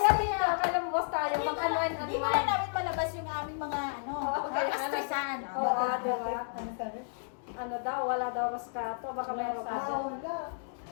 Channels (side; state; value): right; silent; digital silence